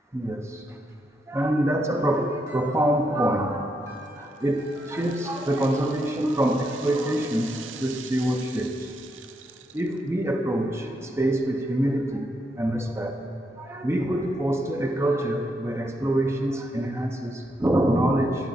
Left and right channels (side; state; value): both; normal; correlation 0.79